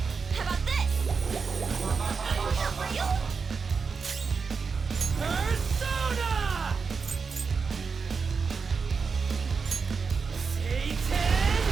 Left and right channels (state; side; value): quieter; left; 5.2 dB